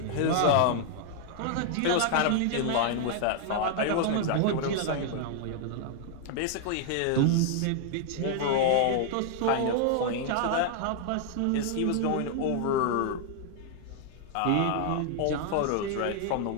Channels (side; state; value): both; different; correlation 0.00